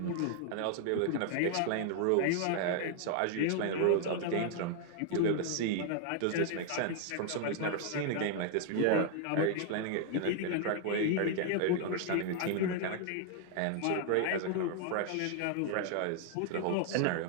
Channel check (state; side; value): different; both; correlation 0.00